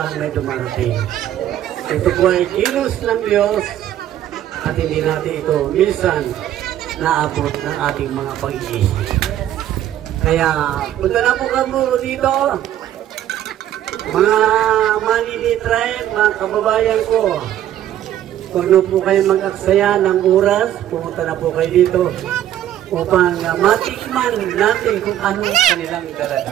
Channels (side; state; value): left; quieter; 11.8 dB